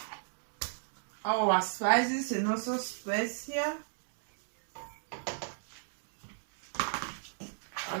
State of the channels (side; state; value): left; silent; digital silence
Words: our spices and also specia,